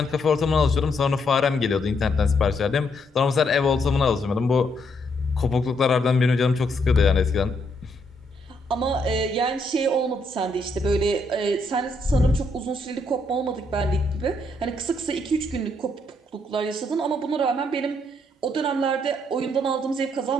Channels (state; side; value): normal; both; correlation 0.74